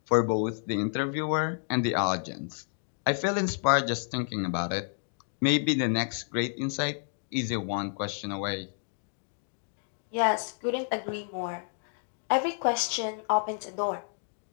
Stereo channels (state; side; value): silent; right; digital silence